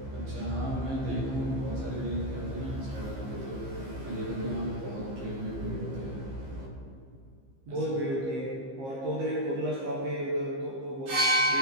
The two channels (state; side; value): late; left; 15 ms